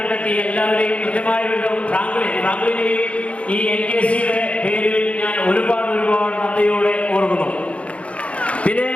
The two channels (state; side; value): late; right; 0.063 ms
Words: എല്ലാവരെയും കൃത്യമായ വിധം ഫ്രാങ്ക്ലിനെയും ഈ NKCയുടെ പേരിൽ ഞാൻ ഒരുപാട് നന്ദിയോടെ ഓർക്കുന്നു. പിന്നെ